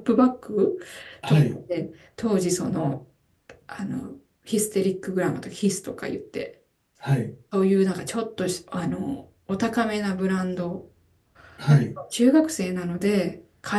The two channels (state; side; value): identical; both; correlation 1.00